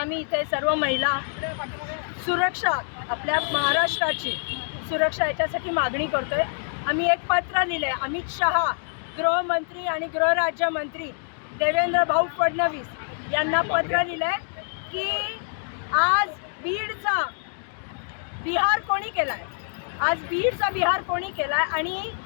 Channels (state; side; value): silent; right; digital silence